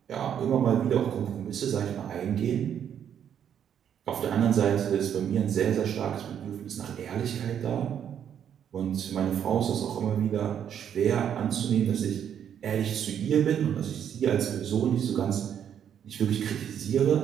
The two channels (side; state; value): left; quieter; 9.0 dB